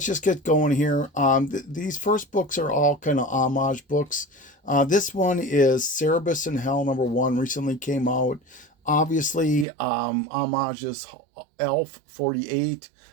just get going here. These first books are all kind of homage books. This one is Cerebus in Hell #1, recently came out. Obviously, Homage is Elf 48.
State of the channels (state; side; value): drops out; left; at 9.7 s